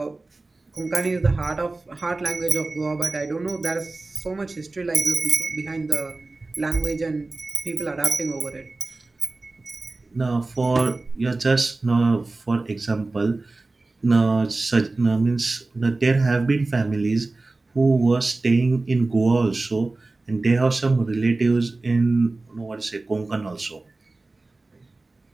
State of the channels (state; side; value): quieter; left; 3.3 dB